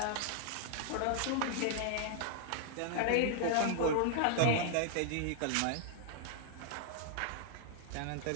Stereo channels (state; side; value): different; both; correlation -0.01